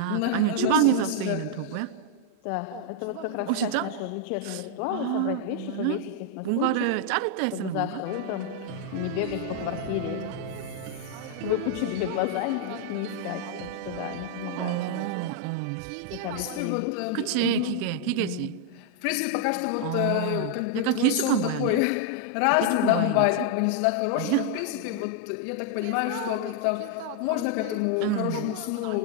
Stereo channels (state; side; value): different; both; correlation 0.00